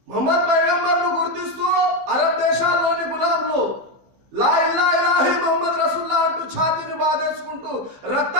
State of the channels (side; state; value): left; late; 15 ms